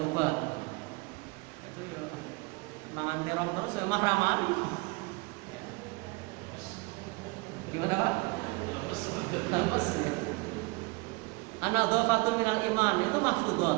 obat. Itu ya, mangan terong terus ya mah ramaan. Gimana Pak? Lemes. An-nadhafatun minal iman, itu maftudat,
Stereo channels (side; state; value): left; quieter; 27.0 dB